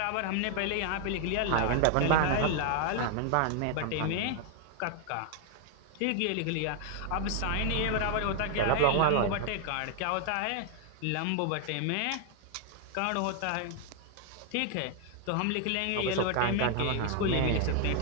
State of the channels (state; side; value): different; both; correlation 0.00